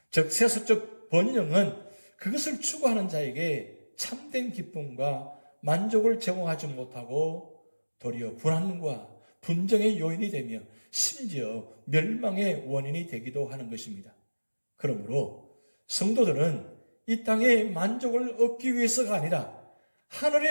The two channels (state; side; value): inverted; both; correlation -1.00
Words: 즉 세속적 번영은 그것을 추구하는 자에게 참된 기쁨과 만족을 제공하지 못하고 도리어 불안과 분쟁의 요인이 되며 심지어 멸망의 원인이 되기도 하는 것입니다. 그러므로 성도들은 이 땅의 만족을 얻기 위해서가 아니라